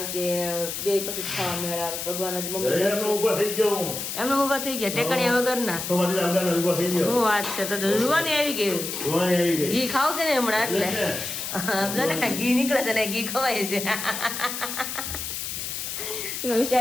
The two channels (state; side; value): noise; left; hiss, 5 dB below the sound